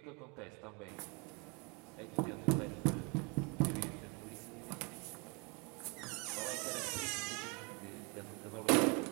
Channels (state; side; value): quieter; left; 31.3 dB